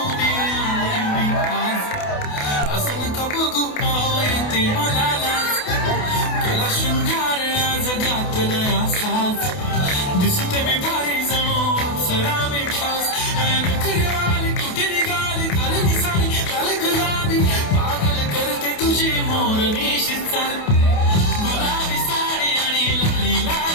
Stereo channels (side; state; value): right; late; 28 ms